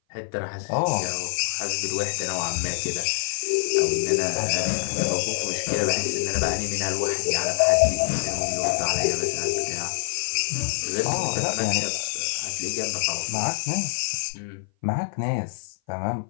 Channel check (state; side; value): silent; right; 57 dB below the other